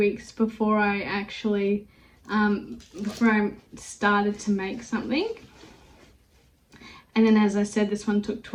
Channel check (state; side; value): identical; both; correlation 1.00